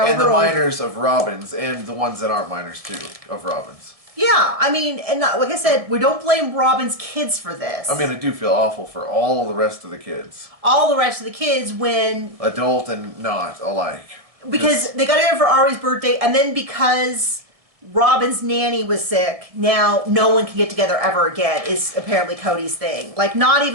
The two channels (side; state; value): left; late; 1.7 ms